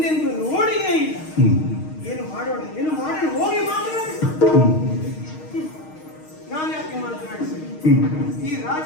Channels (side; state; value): right; late; 6.4 ms